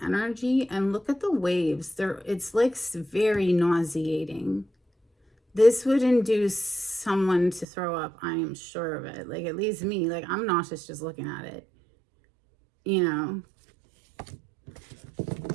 energy, and look at the waves. It's like very nauseating. This would induce someone to throw up, I am sure of it. Like, at least me, like, I'm nauseous just looking at it. You know,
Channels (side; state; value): left; drops out; at 7.7 s